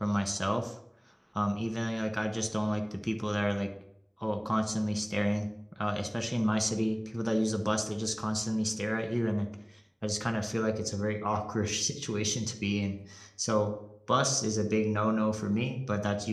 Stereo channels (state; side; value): identical; both; correlation 1.00